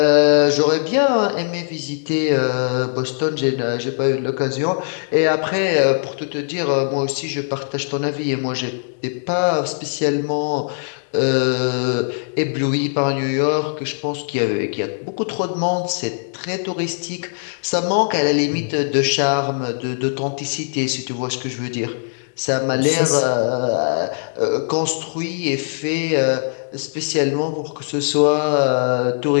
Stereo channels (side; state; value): right; silent; digital silence